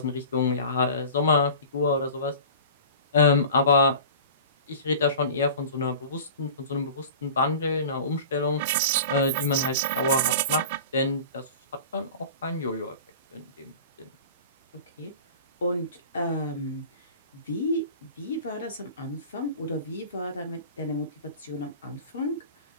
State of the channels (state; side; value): inverted; both; correlation -0.38